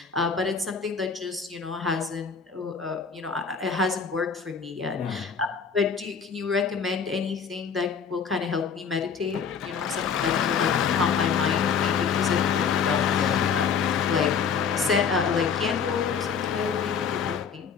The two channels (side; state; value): right; quieter; 6.3 dB